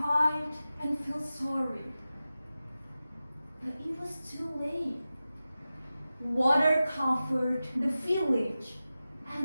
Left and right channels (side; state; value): both; inverted; correlation -0.94